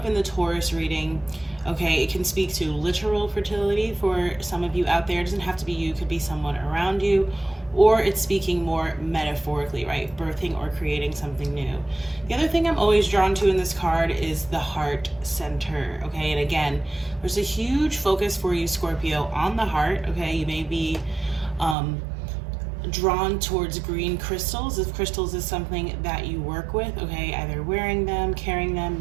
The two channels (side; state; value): left; drops out; at 21.8 s